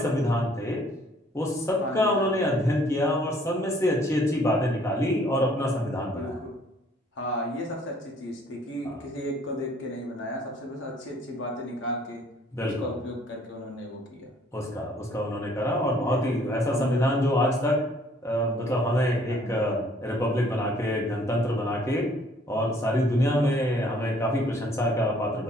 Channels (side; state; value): both; normal; correlation 0.60